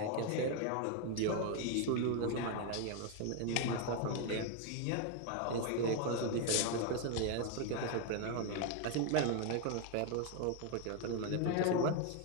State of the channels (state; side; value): different; both; correlation 0.01